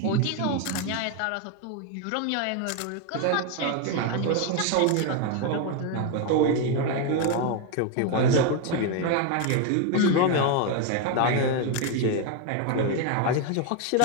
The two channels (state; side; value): different; both; correlation 0.01